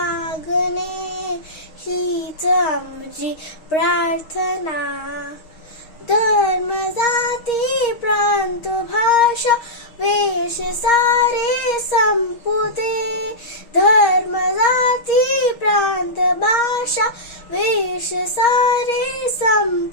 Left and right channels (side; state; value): right; late; 6.3 ms